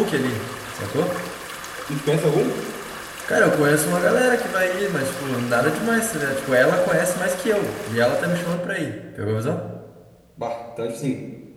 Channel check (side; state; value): both; identical; correlation 1.00